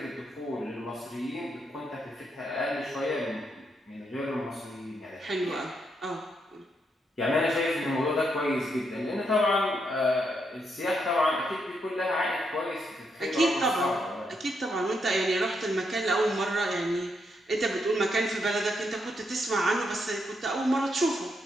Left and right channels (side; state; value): both; normal; correlation 0.79